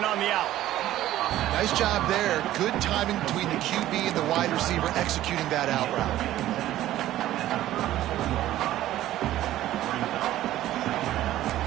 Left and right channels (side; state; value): left; quieter; 14.0 dB